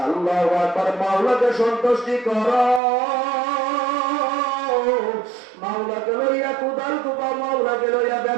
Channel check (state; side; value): drops out; left; at 2.8 s